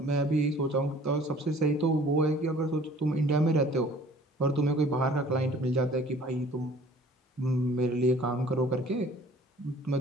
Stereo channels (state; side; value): normal; both; correlation 0.52